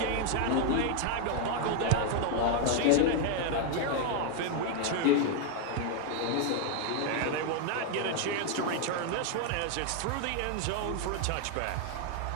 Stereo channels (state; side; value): different; both; correlation 0.00